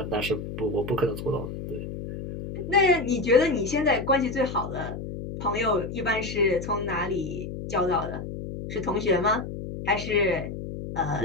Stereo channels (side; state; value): left; noise; hum, 8 dB below the sound